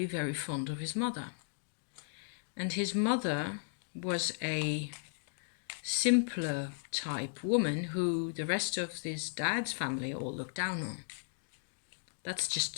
very fond of his mother. And his mother was a simpler type woman who the rest of his dad's family all looked down on. That's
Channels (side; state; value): right; silent; digital silence